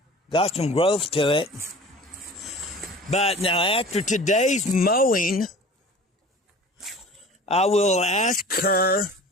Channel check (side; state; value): both; normal; correlation 0.42